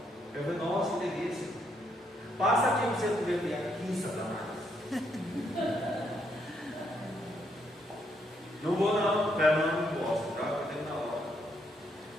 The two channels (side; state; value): both; normal; correlation 0.74